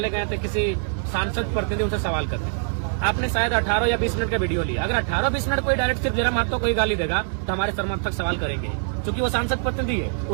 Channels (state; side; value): silent; left; 62 dB below the other